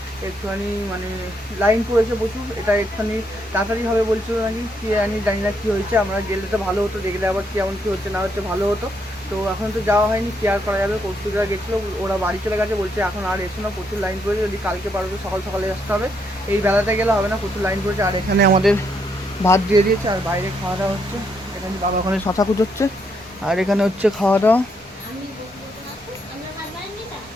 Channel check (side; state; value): both; normal; correlation 0.75